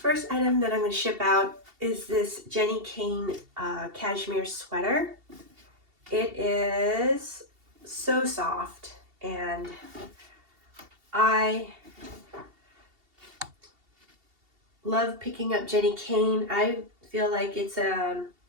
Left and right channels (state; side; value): late; left; 2.7 ms